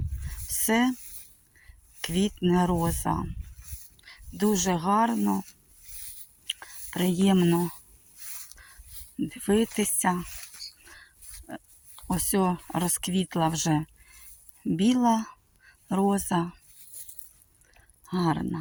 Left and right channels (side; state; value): both; identical; correlation 1.00